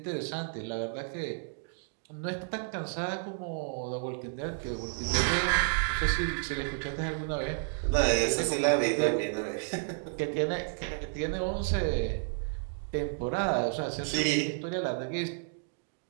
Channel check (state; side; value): silent; left; digital silence